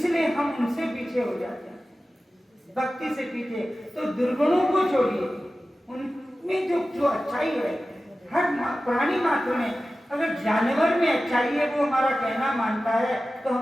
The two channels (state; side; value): normal; both; correlation 0.95